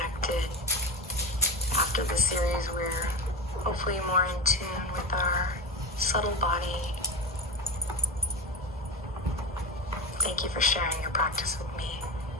After the series, we're hopefully more in tune with our subtle body. Thank you for sharing your practice with me.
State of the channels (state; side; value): normal; both; correlation 0.23